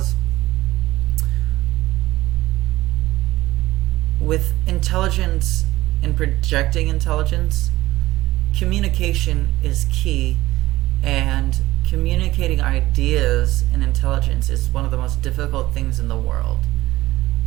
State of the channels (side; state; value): left; quieter; 17.0 dB